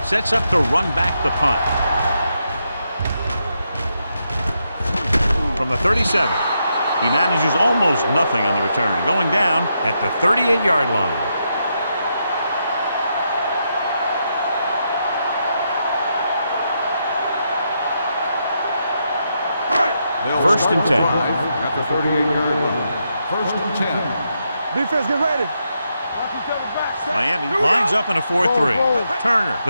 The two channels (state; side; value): inverted; both; correlation -0.82